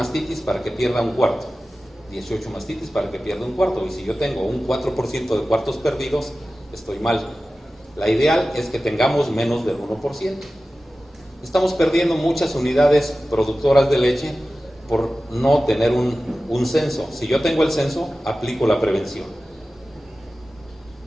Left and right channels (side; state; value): both; normal; correlation 0.95